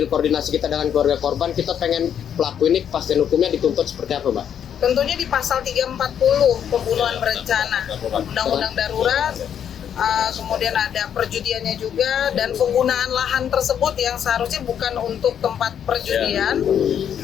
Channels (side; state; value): right; quieter; 8.9 dB